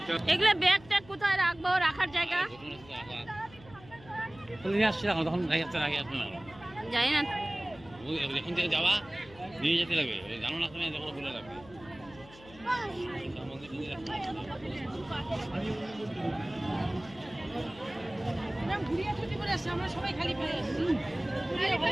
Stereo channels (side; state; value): left; noise; hum, 21 dB below the sound